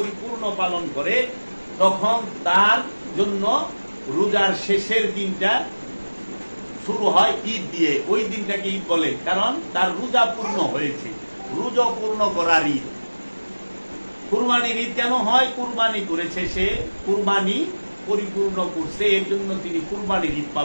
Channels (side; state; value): both; inverted; correlation -1.00